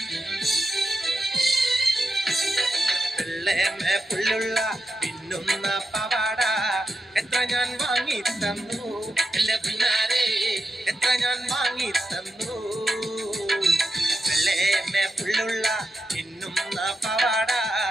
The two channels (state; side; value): normal; both; correlation 0.88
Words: വെള്ളേമേ പുള്ളുള്ള പിന്നുന്ന പവാട എത്ര ഞാൻ വാങ്ങി തന്നു എന്റെ പിന്നാരെ എത്ര ഞാൻ വാങ്ങി തന്നു. വെള്ളേമേ പുള്ളുള്ള പിന്നുന്ന പവാട